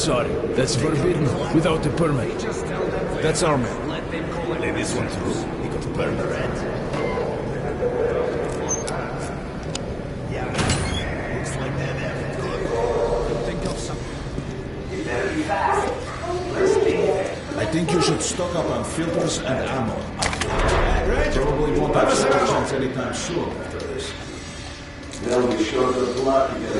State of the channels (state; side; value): identical; both; correlation 1.00